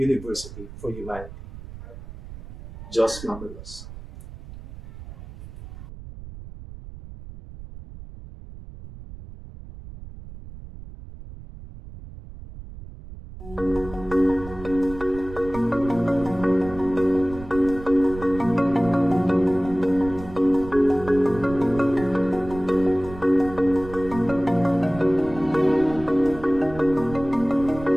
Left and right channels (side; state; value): right; noise; rumble, 14 dB below the sound